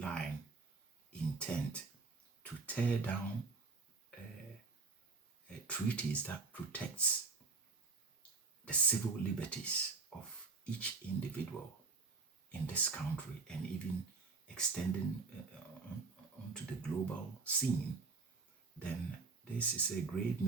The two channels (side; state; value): left; quieter; 4.2 dB